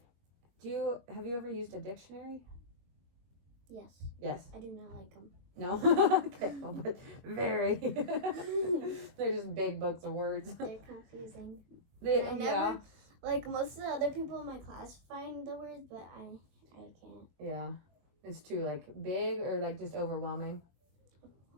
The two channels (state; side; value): late; left; 22 ms